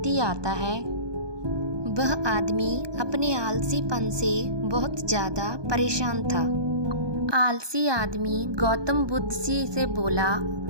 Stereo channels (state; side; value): late; left; 1.2 ms